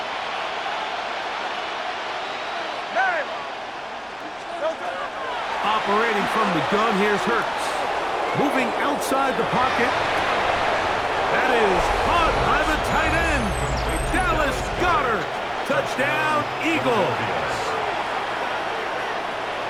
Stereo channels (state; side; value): identical; both; correlation 1.00